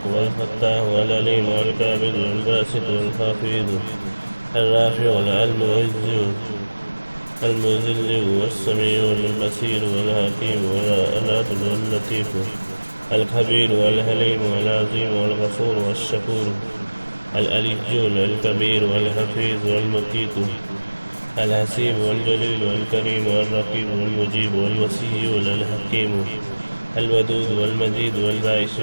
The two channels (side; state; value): both; inverted; correlation -1.00